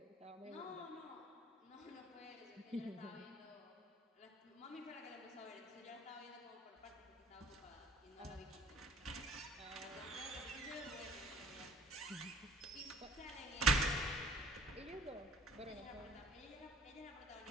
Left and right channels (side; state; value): both; normal; correlation 0.53